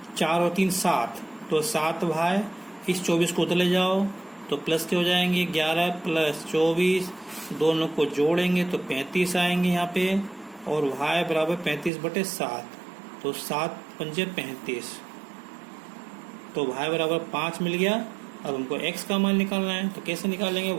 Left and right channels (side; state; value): left; drops out; at 11.9 s